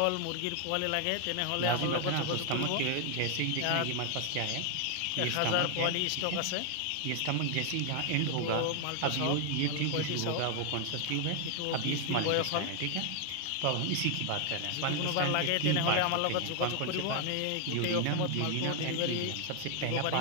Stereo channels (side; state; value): both; different; correlation 0.00